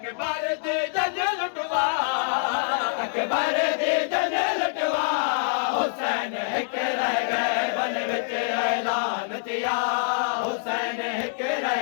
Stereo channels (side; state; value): right; silent; digital silence